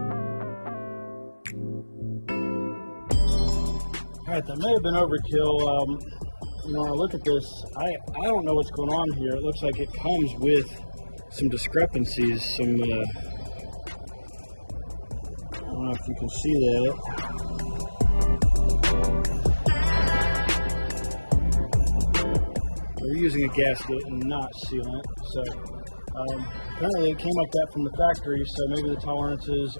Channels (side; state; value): both; inverted; correlation -1.00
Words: All right, that may have been overkill. When I look at this, I don't know what's going on here. It looks like it comes with some discrepancies, I don't know if you can see that. We're using a gasket and not sealant, so apparently it came like that from the factory, so maybe the tolerances